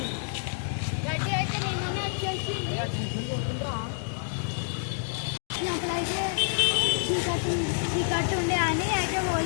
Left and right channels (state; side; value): silent; right; digital silence